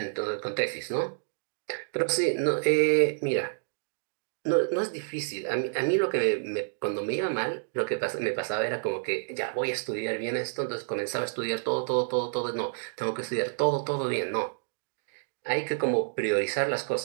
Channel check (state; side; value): silent; left; digital silence